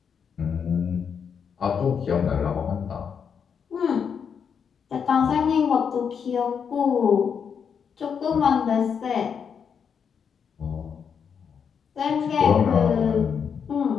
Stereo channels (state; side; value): quieter; right; 6.9 dB